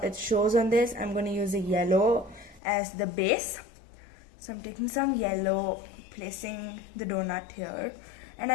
it shows on this. I'm going to use a yellow as the base. So I'm taking some yellow, placing the donut here, and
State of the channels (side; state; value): right; drops out; at 2.6 s